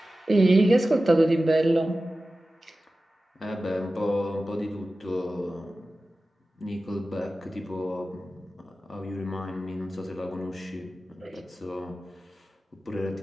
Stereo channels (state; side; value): normal; both; correlation 0.95